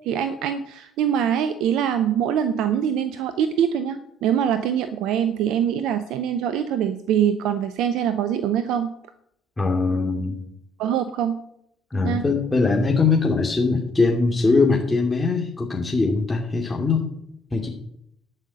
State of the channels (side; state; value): both; normal; correlation 0.58